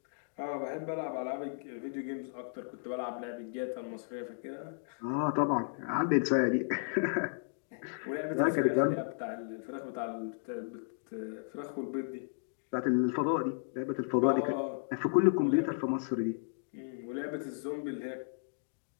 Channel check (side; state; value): right; silent; digital silence